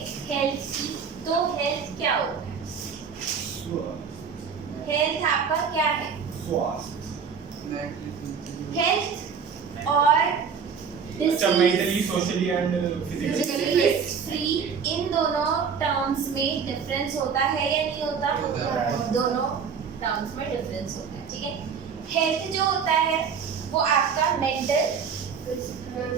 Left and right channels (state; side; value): quieter; left; 6.4 dB